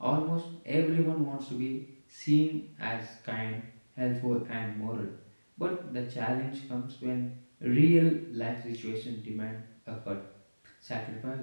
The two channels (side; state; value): both; inverted; correlation -1.00